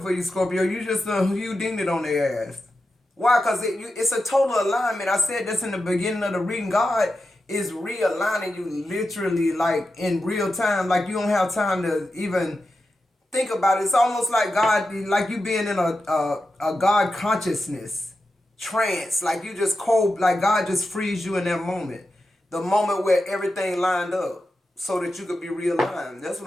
for you, Scorpio. You just you dinged it on their ass. Why? Because it's a total alignment. I said this in the beginning of the reading. God is realigning you literally, like, in real time. Like, you don't have time to even think about it. It's almost like God, like you being in a God consciousness trance. Like you just cold, like God just frees you in that moment. The moment where everything lined up so that you could be realigned. That's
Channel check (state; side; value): normal; both; correlation 0.90